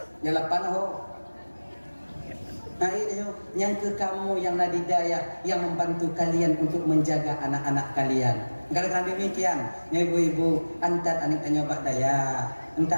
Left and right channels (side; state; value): both; inverted; correlation -1.00